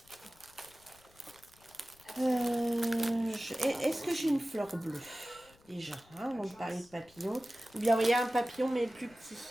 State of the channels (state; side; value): noise; left; rumble, 28 dB below the sound